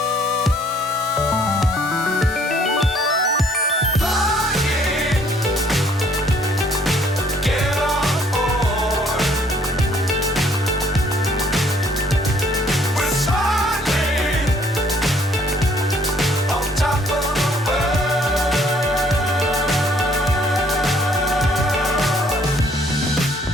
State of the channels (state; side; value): normal; both; correlation 0.62